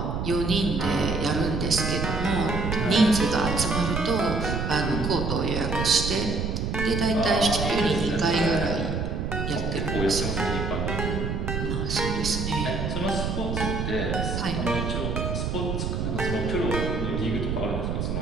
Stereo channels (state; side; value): noise; right; rumble, 1 dB below the sound